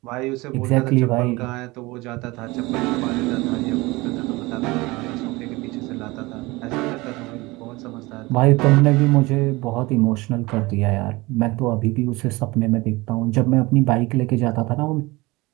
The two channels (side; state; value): left; quieter; 22.2 dB